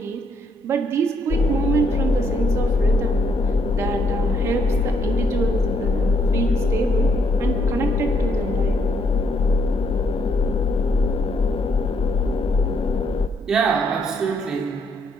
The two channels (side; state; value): both; normal; correlation 0.73